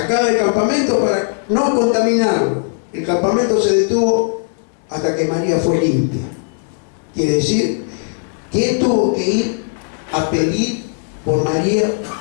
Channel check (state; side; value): silent; right; digital silence